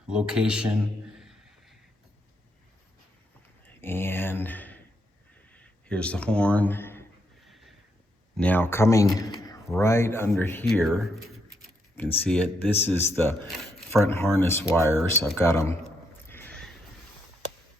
location. And here's the horn. Now coming right under here, you can see it. This is the front harness wires. I've got them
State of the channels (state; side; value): normal; both; correlation 0.78